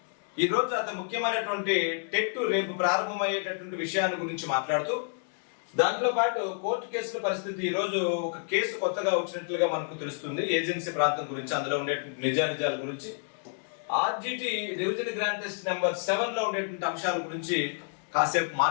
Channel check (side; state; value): right; silent; 58 dB below the other